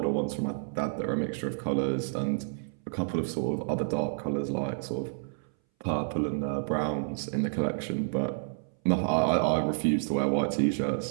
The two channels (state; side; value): silent; left; 58 dB below the other